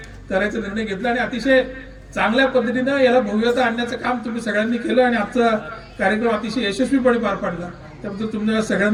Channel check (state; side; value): identical; both; correlation 1.00